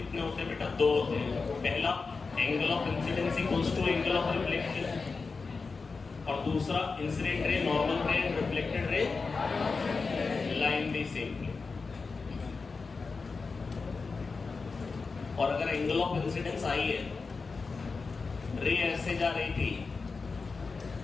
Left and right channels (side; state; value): right; quieter; 4.5 dB